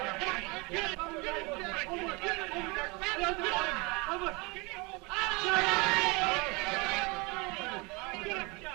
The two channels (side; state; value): left; quieter; 27.6 dB